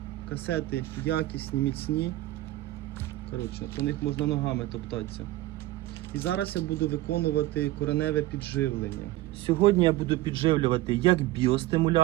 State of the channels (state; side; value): quieter; left; 17.0 dB